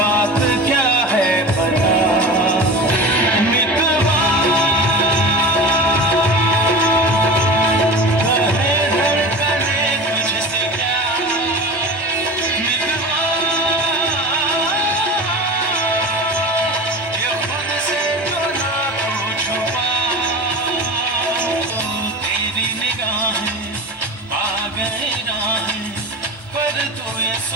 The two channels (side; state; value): both; normal; correlation 0.33